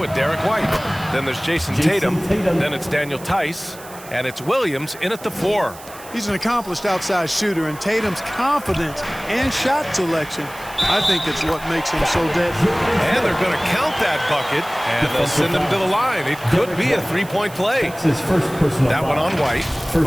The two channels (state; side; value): noise; right; hiss, 18 dB below the sound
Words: Derek White. Then there's Jason Tatum. Then it's Daniel Tice. And it's Williams in at the 4. He's an accomplished outside shooter, and Tatum's confidence and shot selection, I think it's what makes him so deadly. And they're going to count that bucket, and they'll send him to the line. It could be a three-point play. That one on White.